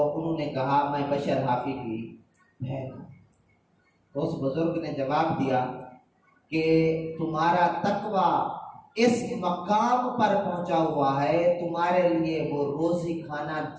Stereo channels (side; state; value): both; identical; correlation 1.00